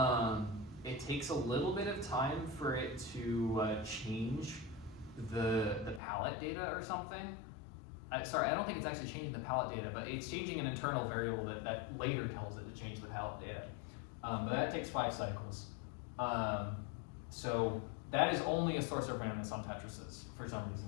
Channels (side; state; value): right; drops out; at 6.0 s